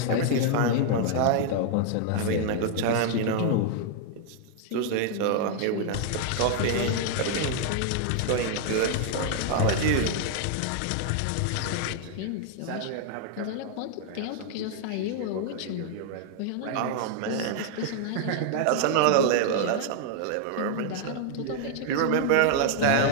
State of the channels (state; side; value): different; both; correlation 0.00